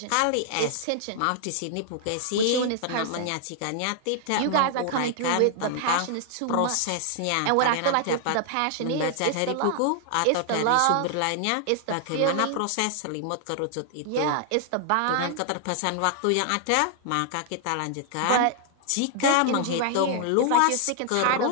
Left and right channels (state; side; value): different; both; correlation 0.00